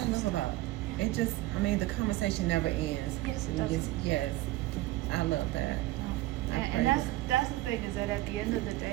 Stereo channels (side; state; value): left; quieter; 17.5 dB